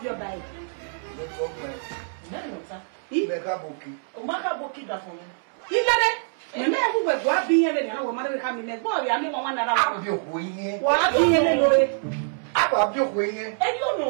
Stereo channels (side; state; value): left; silent; 62 dB below the other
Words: your bag. No problem. No, no, sir. Mega boki. Mega boki that for me. You get it? Me who we go be here na wo mother come me go ya me one na abi okuyin wa bi here lo e abi okuyin e you know